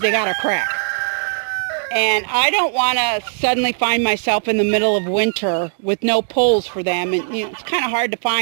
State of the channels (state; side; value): silent; left; digital silence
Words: they got a crack. And I don't want to suddenly find myself in the middle of winter with no poles for them. And, you know, it's kind of hard to